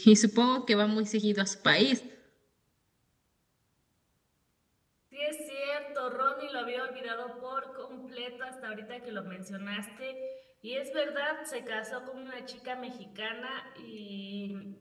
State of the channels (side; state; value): both; identical; correlation 1.00